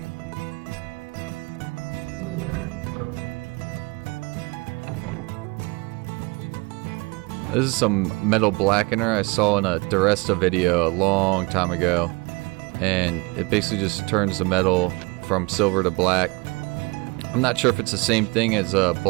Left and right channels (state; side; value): quieter; left; 26.7 dB